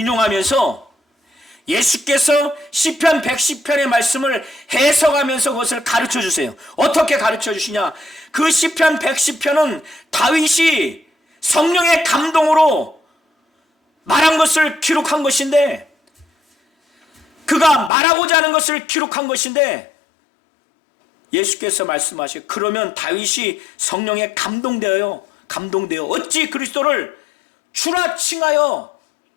예수께서 시편 110편의 말씀을 해석하면서 그것을 가르쳐 주세요. 어떻게 가르쳐 주시냐? 그 시편 110편은 다윗이 성령의 감동으로 말한 것을 기록한 것인데, 그가 말하고자 하는 것을 기록한 것인데, 예수께서 말씀하시고 그러면 다윗이 성령에 감동되어 어찌 그리스도를 주라 칭하여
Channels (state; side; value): drops out; right; at 17.9 s